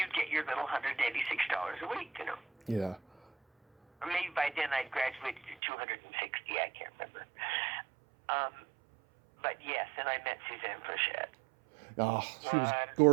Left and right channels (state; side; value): drops out; left; at 5.6 s